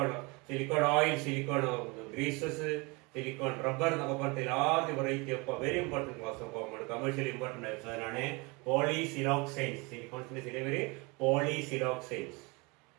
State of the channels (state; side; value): quieter; left; 27.5 dB